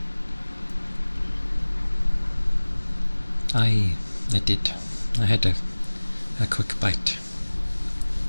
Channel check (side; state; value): both; inverted; correlation -1.00